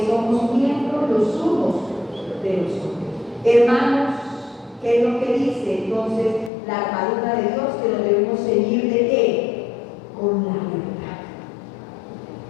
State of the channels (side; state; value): right; drops out; at 6.5 s